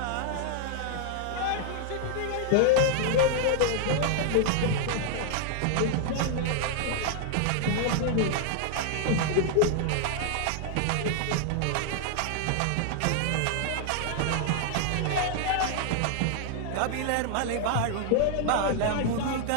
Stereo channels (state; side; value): different; both; correlation 0.00